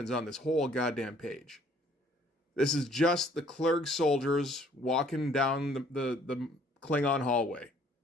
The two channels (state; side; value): normal; both; correlation 0.59